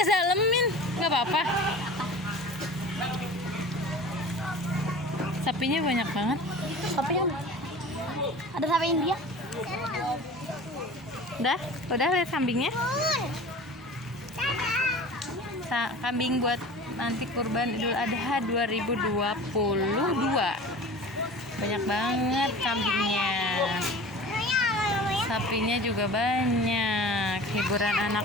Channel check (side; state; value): both; normal; correlation 0.39